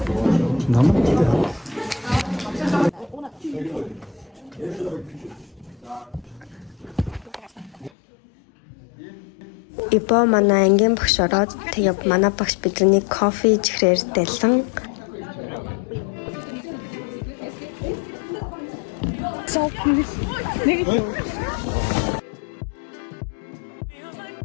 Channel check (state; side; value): drops out; right; at 7.9 s